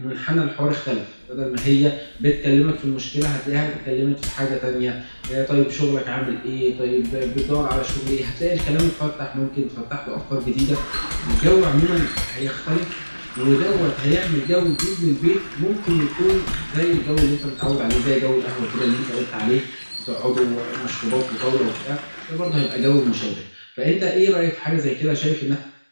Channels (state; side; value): inverted; both; correlation -1.00